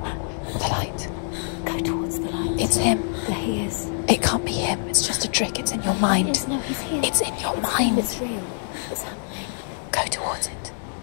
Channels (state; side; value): silent; right; digital silence